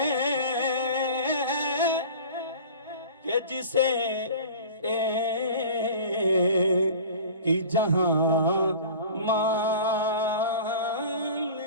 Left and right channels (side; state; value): both; inverted; correlation -0.40